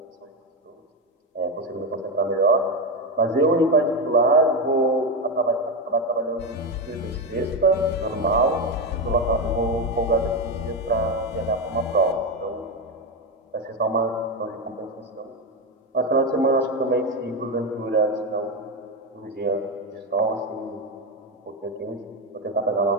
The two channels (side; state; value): both; normal; correlation 0.12